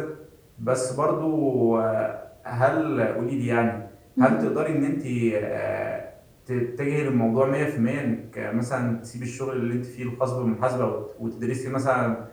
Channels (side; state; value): both; identical; correlation 1.00